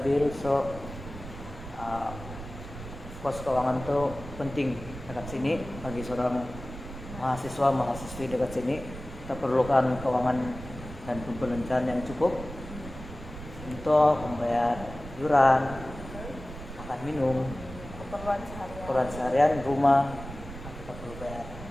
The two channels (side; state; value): right; noise; rumble, 12 dB below the sound